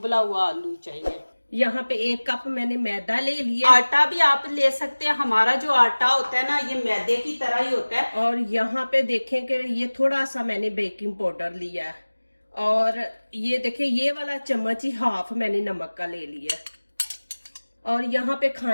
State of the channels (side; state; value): both; inverted; correlation -1.00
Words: हुआ आलू चाहिए। यहाँ पे 1 कप मैंने मैदा ले लिया। आटा भी आप ले सकते हैं, हमारा जो आटा होता है ना ये मैदे की तरह ही होता है। और यहाँ पे देखें कि ये थोड़ा सा मैंने बेकिंग पाउडर लिया है और ये देखें ये वाला चम्मच ही हाफ मैंने नमक का ले लिया। और यहाँ पे